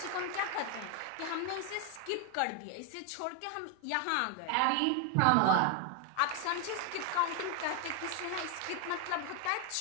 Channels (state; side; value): different; both; correlation 0.01